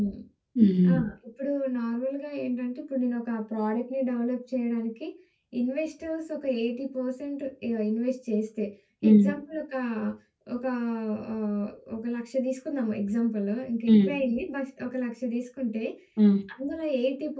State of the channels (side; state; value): both; identical; correlation 1.00